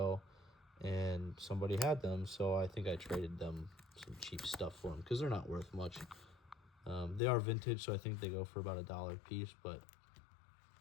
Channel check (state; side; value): drops out; right; at 7.2 s